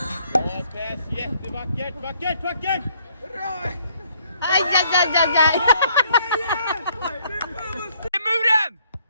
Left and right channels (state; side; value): inverted; both; correlation -0.66